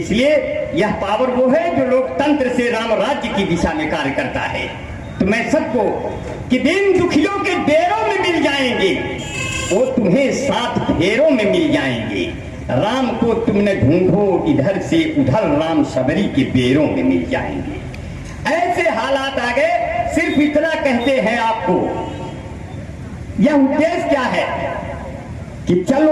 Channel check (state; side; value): identical; both; correlation 1.00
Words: यह पावर वो है जो लोकतंत्र से राम राज्य की दिशा में कार्य करता है। तो मैं सबको कि दिन दुखियों के डेरों में मिल जाएंगे, वो तुम्हें 7 फेरों में मिल जाएंगे। राम को तुमने ढूंढो इधर से उधर, राम सबरी के बेरों में मिल जाएंगे। ऐसे हालात आ गए। सिर्फ इतना कहते हैं आपको, यह उद्देश्य क्या है कि